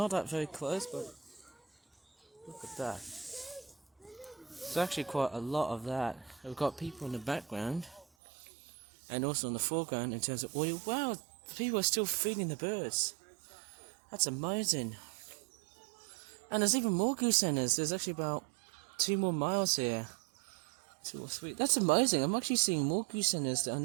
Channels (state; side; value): drops out; left; at 8.1 s